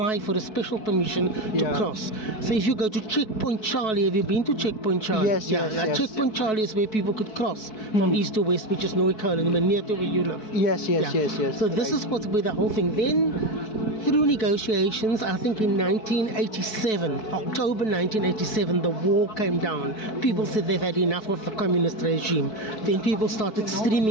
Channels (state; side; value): late; right; 4.6 ms